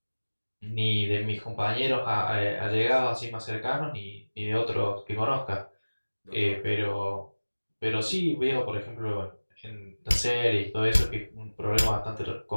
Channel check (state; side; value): inverted; both; correlation -1.00